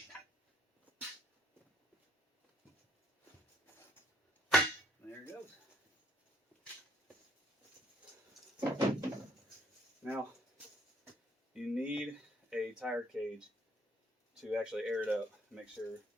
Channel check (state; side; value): normal; both; correlation 0.66